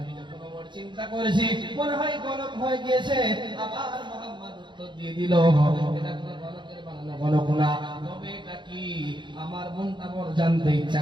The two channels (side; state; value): left; late; 0.23 ms